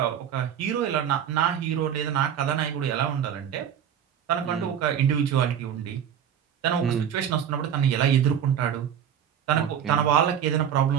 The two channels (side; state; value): left; quieter; 9.0 dB